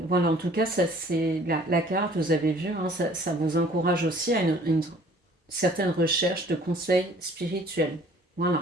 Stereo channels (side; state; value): both; normal; correlation 0.54